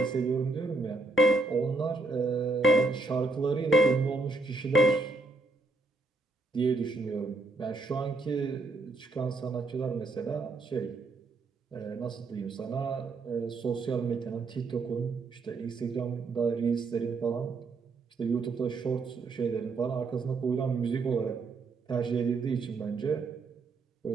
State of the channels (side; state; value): left; quieter; 3.5 dB